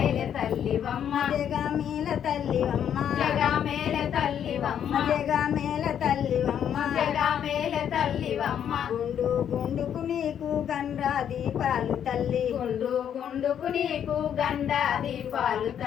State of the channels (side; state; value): right; quieter; 9.2 dB